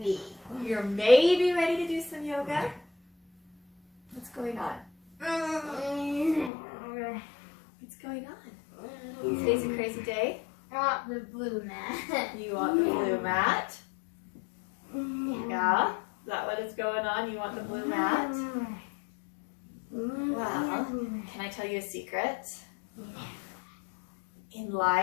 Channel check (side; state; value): right; drops out; at 6.5 s